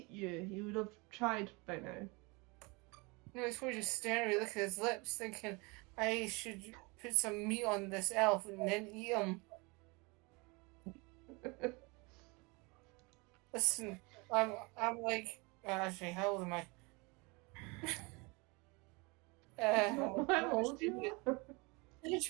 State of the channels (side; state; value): left; quieter; 27.7 dB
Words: you, he would have tried by now. No, he's probably just staring at me, looking at his lips, thinking I should put some meat on this elf and then eat him. Listen, I'm like, actually, how old am I? How old you are? You